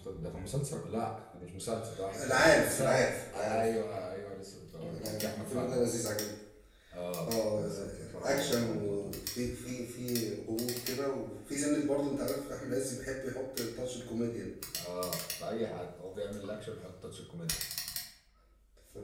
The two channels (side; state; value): both; identical; correlation 1.00